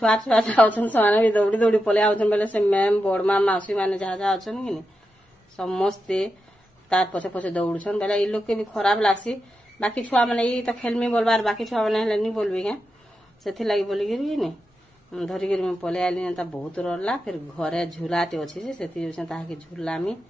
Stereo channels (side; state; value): both; normal; correlation 0.88